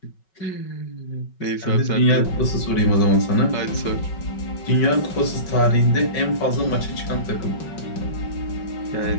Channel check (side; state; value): right; late; 5.3 ms